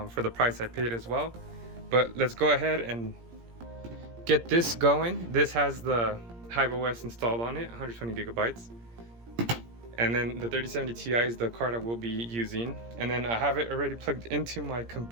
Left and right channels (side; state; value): left; late; 17 ms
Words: for the price I paid as well. But let's go ahead and get this going. This has the HiveOs installed on it, 120GB. And then the 3070 Ti is the card I will be using. And then I have it already plugged into my